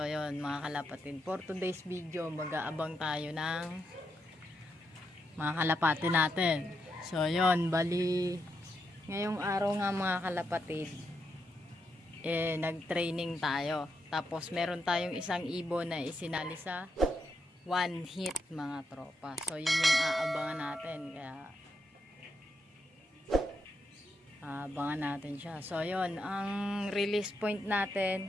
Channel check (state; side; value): normal; both; correlation 0.83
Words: yun mga kalapatid, for today's video mag-aabang tayo ng mga kalapati natin. So yun, bali ngayong araw nga mga kalapatid, nag-training tayo. Tapos meron tayong isang ibon na isinali sa one hit mga tropa. So yun yung aabangan natin, kaya abangan natin siya. So yun, ang release point